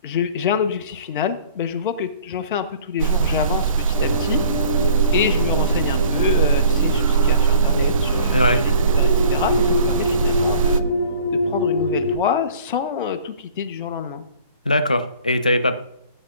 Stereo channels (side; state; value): both; inverted; correlation -0.49